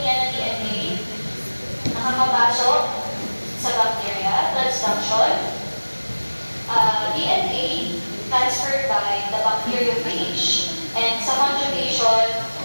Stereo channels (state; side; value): inverted; both; correlation -1.00